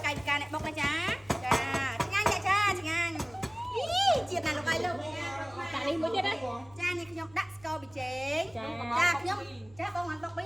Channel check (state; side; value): noise; right; hum, 25 dB below the sound